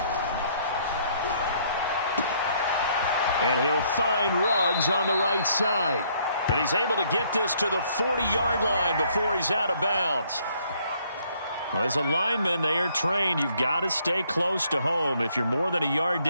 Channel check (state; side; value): inverted; both; correlation -0.66